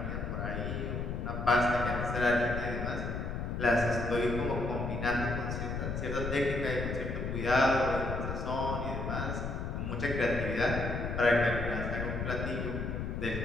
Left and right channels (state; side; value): noise; left; rumble, 3 dB below the sound